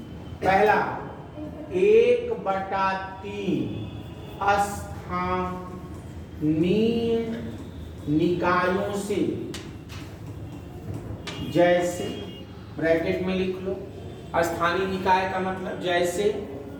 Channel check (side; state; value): both; identical; correlation 1.00